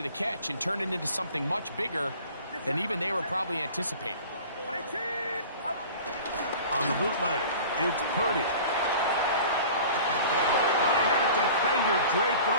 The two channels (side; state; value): both; inverted; correlation -0.42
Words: the catch and turn it into something much bigger than even they were probably anticipating. On the bootleg, it's Purdy. I had a defender draped